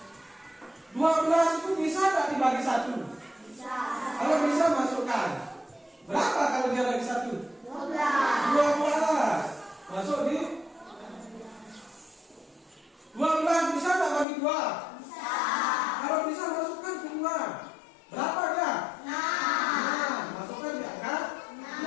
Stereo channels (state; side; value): drops out; right; at 14.2 s